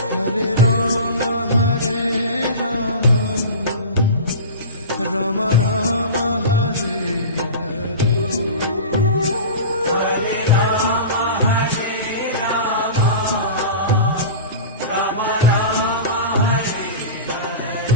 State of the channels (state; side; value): inverted; both; correlation -0.31